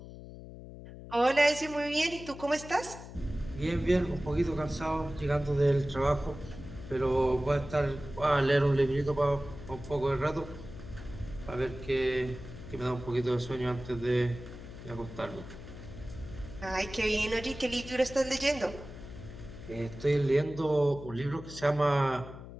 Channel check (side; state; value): left; noise; hum, 14 dB below the sound